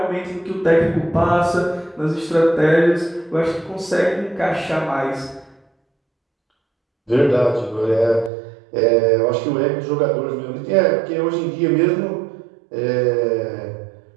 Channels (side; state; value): left; drops out; at 8.3 s